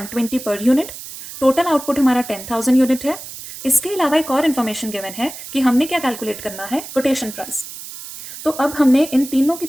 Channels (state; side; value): noise; right; hiss, 12 dB below the sound